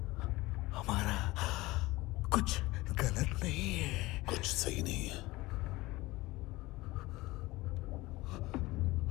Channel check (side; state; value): right; quieter; 20.0 dB